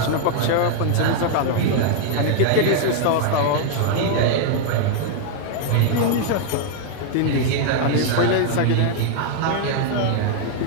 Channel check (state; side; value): different; both; correlation 0.00